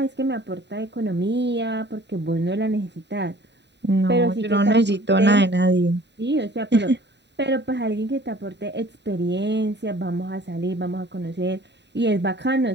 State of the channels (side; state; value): left; late; 0.51 ms